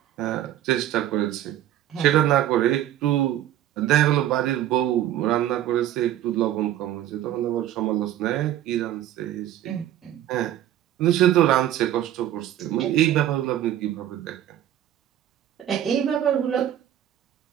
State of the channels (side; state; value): left; quieter; 12.1 dB